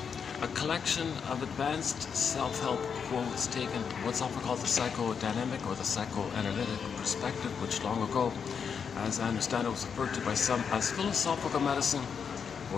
A collection of advanced self-help quotes taken what's often called the psychodynamic or the psychoanalytic perspective, which long ago, as I understand it, was referred to by some as philosophical medicine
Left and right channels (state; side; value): quieter; right; 6.6 dB